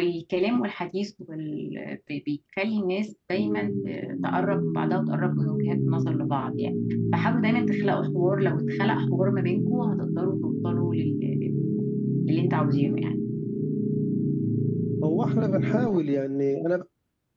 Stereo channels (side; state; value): both; identical; correlation 1.00